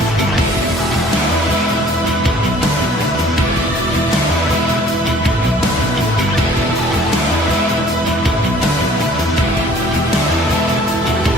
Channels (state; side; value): normal; both; correlation 0.54